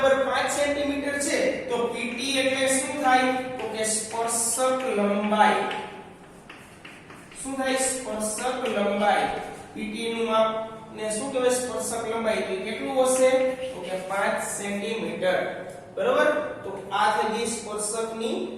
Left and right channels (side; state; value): both; identical; correlation 1.00